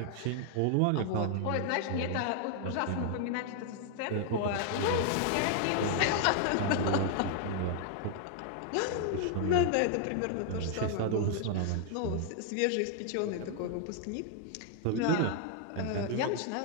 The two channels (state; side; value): different; both; correlation 0.00